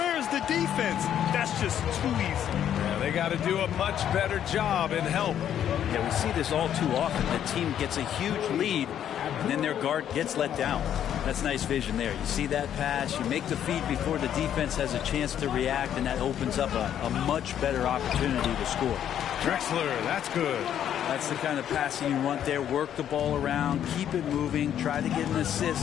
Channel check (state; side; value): quieter; right; 10.0 dB